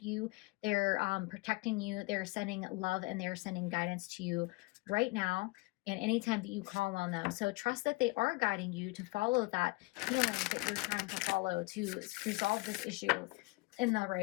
you, they're protecting you, they're sending love, and they're sending guidance to you right now and anytime that you call on them. So trust that they are guiding you to follow that healing that you're trying to follow to resolve this issue in the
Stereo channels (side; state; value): right; quieter; 25.1 dB